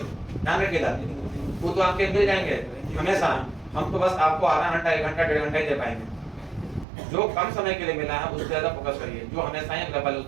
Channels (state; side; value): drops out; left; at 6.9 s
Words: ध्यान रखिएगा, वो तो आपके मिल जाएंगे हमेशा। हम तो बस आपको आधा घंटा 1 घंटा 1.5 घंटा ही दे पाएंगे। जो कम समय के लिए मिला है उस पर ज्यादा फोकस करिए, जो हमेशा ही अवेलेबल है उस